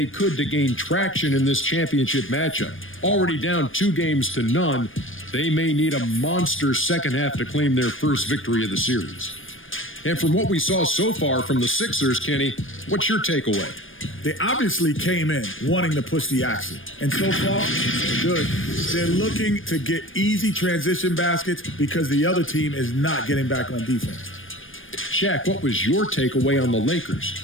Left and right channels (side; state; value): right; late; 0.58 ms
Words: could to gain traction in this championship matchup. Already down 2-0, they may need a monster second half to claim their first victory of the series. And from what we saw so far from the Sixers, Kenny, what's your takeaway? They obviously came in wanting to push the action. And so far, they're good. They're looking to get easy transition baskets because the other team is not getting back on defense. Shaq, what was your takeaway on the Lakers?